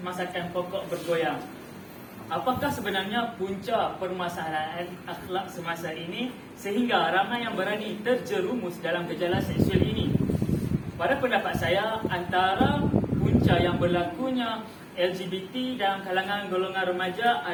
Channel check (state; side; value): identical; both; correlation 1.00